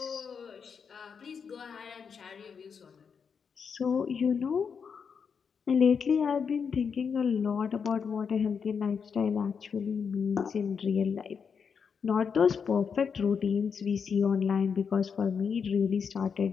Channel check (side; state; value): right; quieter; 6.3 dB